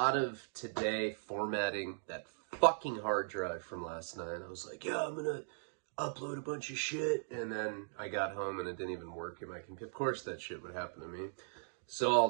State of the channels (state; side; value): silent; left; digital silence